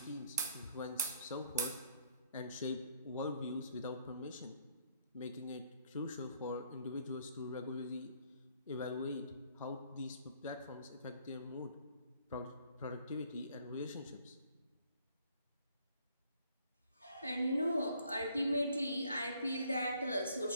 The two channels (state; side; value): inverted; both; correlation -0.65